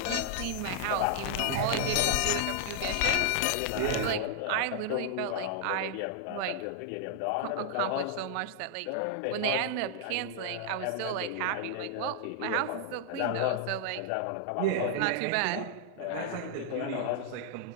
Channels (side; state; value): both; different; correlation 0.00